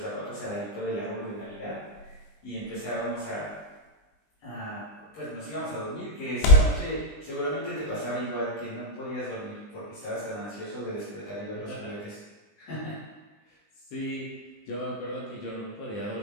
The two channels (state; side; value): late; right; 20 ms